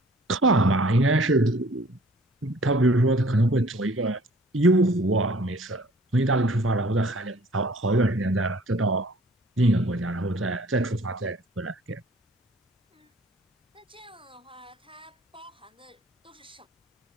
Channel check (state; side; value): normal; both; correlation 0.53